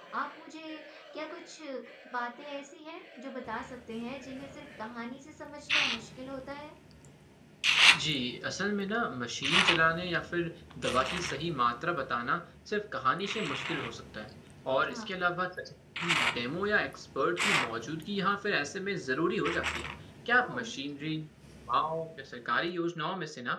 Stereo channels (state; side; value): identical; both; correlation 1.00